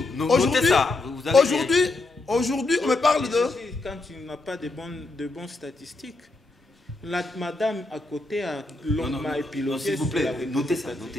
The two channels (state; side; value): quieter; right; 3.1 dB